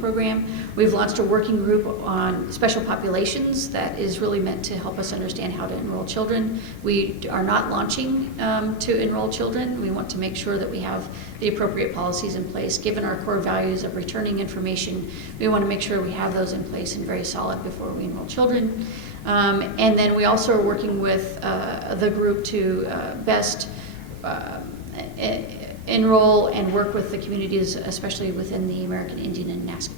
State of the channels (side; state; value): right; late; 8.5 ms